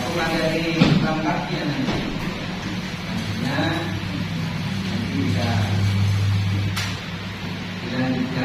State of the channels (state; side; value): identical; both; correlation 1.00